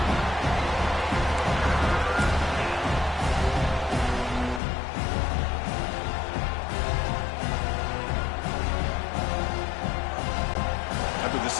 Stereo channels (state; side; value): drops out; right; at 4.6 s